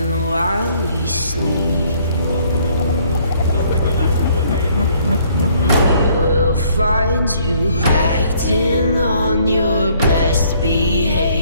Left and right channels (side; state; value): both; inverted; correlation -0.63